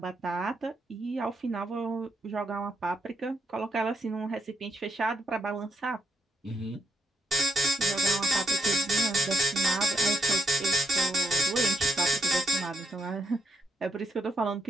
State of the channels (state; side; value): normal; both; correlation 0.80